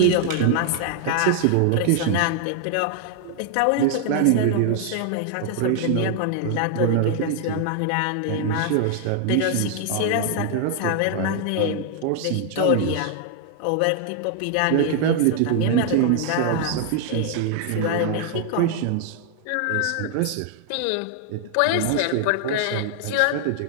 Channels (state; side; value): different; both; correlation 0.00